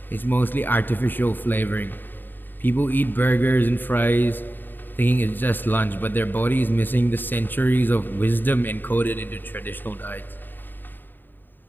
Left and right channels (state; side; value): late; right; 0.092 ms